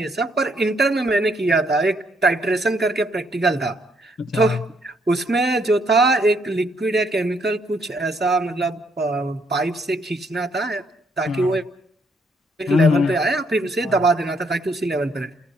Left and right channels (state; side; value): normal; both; correlation 0.71